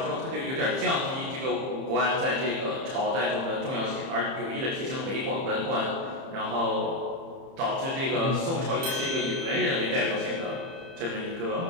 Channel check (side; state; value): left; late; 30 ms